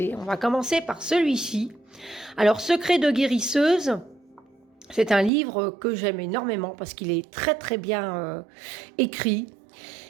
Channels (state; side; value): drops out; left; at 5.3 s